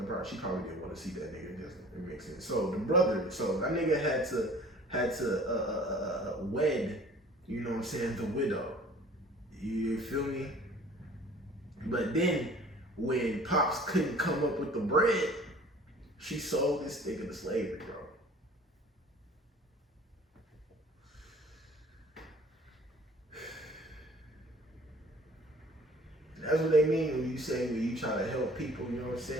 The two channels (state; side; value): normal; both; correlation 0.49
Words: she probably didn't want to see that nigga. It makes sense. So the brother, so that nigga had to wed, you know what I'm saying, the widow. You feel me? But then when Pops couldn't come up with the bread, she sold this nigga to slavery, bro. That's what they mean when you say, when you try to help people, you know what I'm